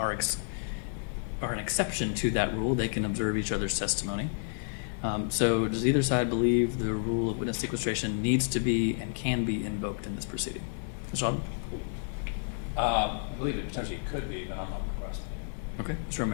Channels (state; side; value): silent; right; 57 dB below the other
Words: an exception to that rule. They can observe each other's testimony. So does either side believe the rule of witness sequestration needs to be and can be invoked in this proceeding? Mr. Alden? I believe it potentially could be, but I'm not requesting it. Okay. Mr.